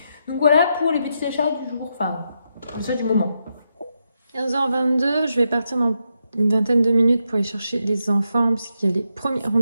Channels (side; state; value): both; inverted; correlation -0.83